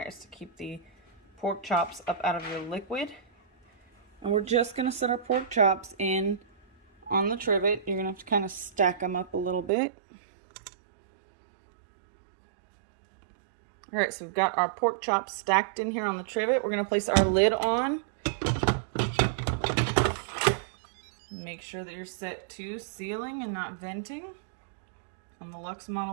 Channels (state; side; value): drops out; left; at 9.7 s